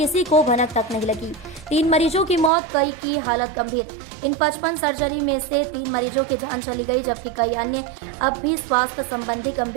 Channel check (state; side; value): drops out; left; at 2.5 s